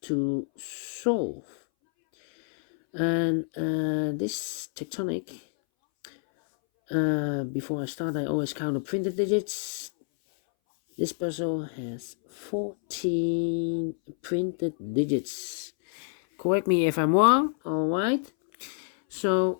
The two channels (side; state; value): right; silent; 60 dB below the other